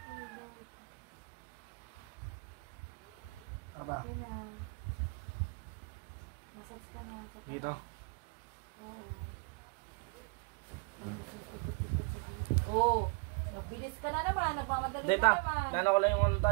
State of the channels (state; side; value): quieter; left; 33.1 dB